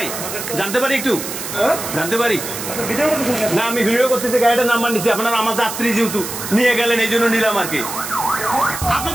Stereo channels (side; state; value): right; noise; hiss, 7 dB below the sound